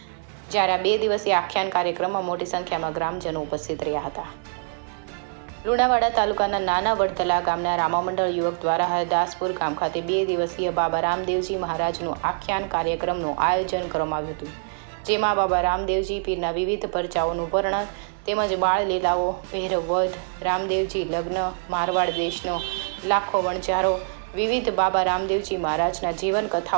જ્યારે આ 2 દિવસીય આખ્યાન કાર્યક્રમમાં મોટી સંખ્યામાં ગ્રામજનો ઉપસ્થિત રહ્યા હતા। લુણાવાડા તાલુકાના નાના વડતલા ગામના રામામંડળ યુવક દ્વારા હરદાસપુર ગામ ખાતે 2 દિવસીય બાબા રામદેવજી મહારાજનું આખ્યાન કાર્યક્રમનું આયોજન કરવામાં આવ્યું હતું, જેમાં બાબા રામદેવજી પીરના વિવિધ પરચાઓનું વર્ણન તેમજ બાળ લીલાઓ, ભૈરવ વધ, રામદેવજી લગ્ન, મારવાડ દેશનો લાખો વણજારો, વિવિધ બાબા રામદેવજી મહારાજના જીવન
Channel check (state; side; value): silent; left; digital silence